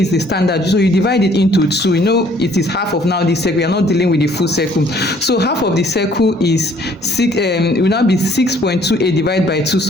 the standard. So you divide it into 2, you know, it is half of now this circle. We are not dealing with the full circle. So half of the circle is will now be 6.28 divided by 2.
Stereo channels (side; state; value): both; normal; correlation 0.60